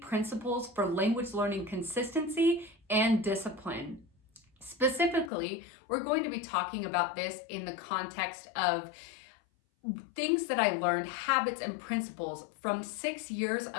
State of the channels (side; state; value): right; drops out; at 5.3 s